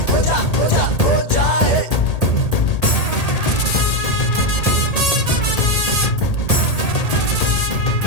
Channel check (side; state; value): right; late; 1.8 ms